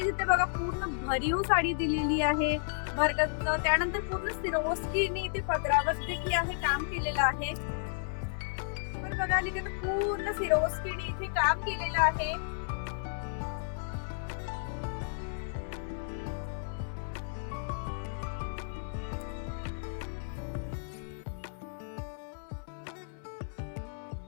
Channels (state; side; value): silent; right; 56 dB below the other